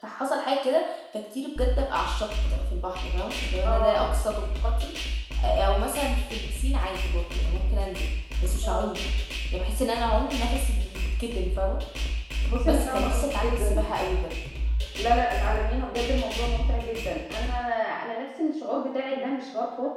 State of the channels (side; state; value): both; identical; correlation 1.00